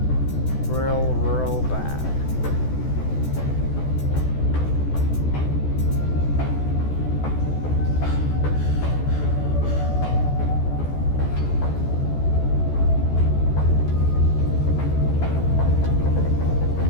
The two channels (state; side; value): late; right; 14 ms